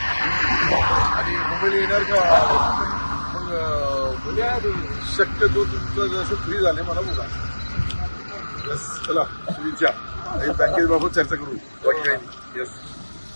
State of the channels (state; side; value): inverted; both; correlation -1.00